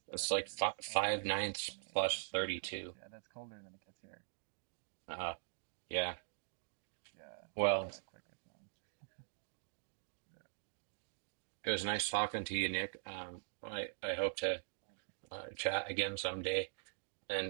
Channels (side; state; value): left; silent; digital silence